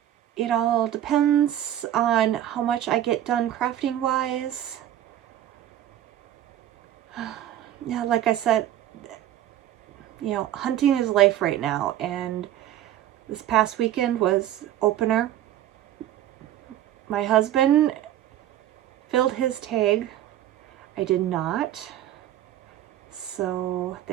It all depends on how much I get done crafting wise. Yeah, like I said, you know, hunting is life right now, and this past weekend was opener. My husband filled his tag. I did not. So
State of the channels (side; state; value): left; quieter; 12.0 dB